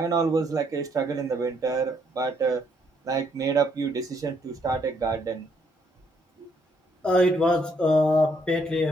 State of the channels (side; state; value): both; normal; correlation 0.71